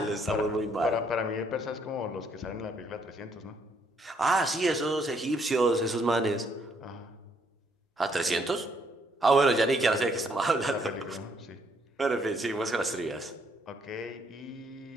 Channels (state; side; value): normal; both; correlation 0.69